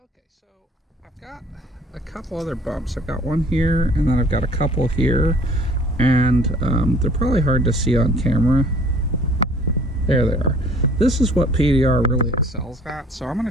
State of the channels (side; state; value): both; normal; correlation 0.53